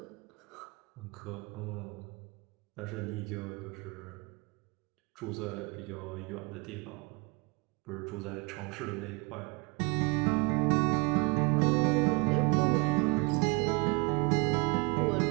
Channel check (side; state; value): left; quieter; 29.0 dB